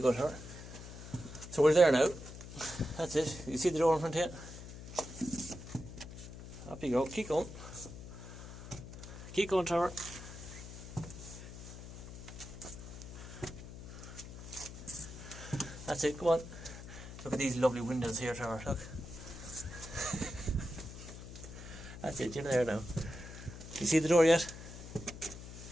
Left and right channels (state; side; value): noise; left; hum, 12 dB below the sound